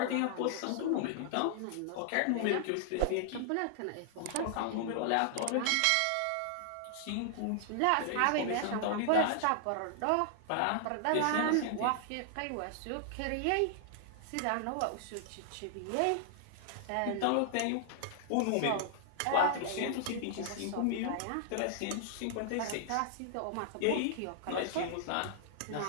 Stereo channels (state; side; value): different; both; correlation 0.00